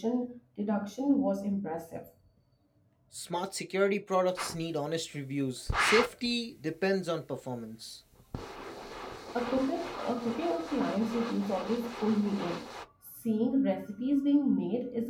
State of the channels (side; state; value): both; identical; correlation 1.00